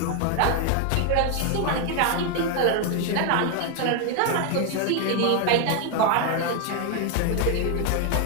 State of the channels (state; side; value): different; both; correlation 0.01